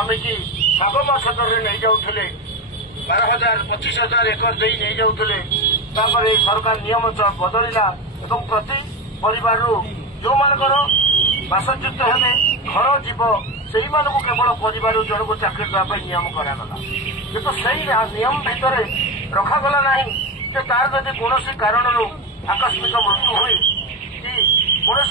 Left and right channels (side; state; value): both; normal; correlation 0.17